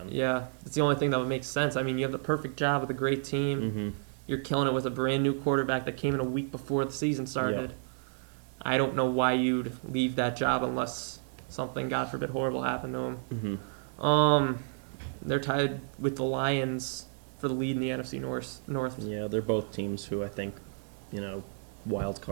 Yeah, it's the only thing that would make sense. I mean, you have the perfect job with a great team. Mm-hmm. You're killing it with a brand new quarterback that came in a week before the season started. Yeah. I don't know why you'd leave that job unless something, God forbid, horrible happened to him. Mm-hmm. They're tied with the Lions for the lead in the NFC North. Yeah, they're both teams who I think, wild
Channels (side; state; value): left; silent; 55 dB below the other